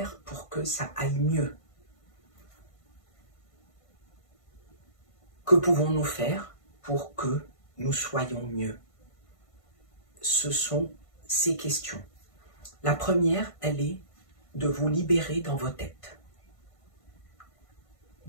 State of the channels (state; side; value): late; right; 1.5 ms